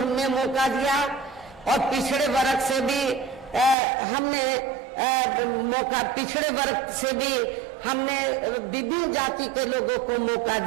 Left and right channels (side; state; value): left; drops out; at 3.8 s